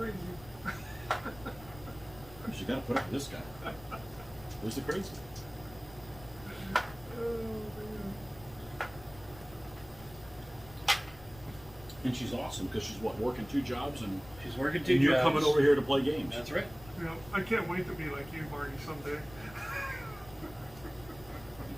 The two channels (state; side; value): noise; left; rumble, 19 dB below the sound